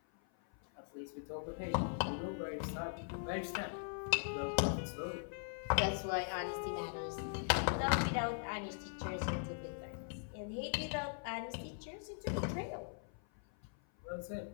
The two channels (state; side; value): silent; right; 51 dB below the other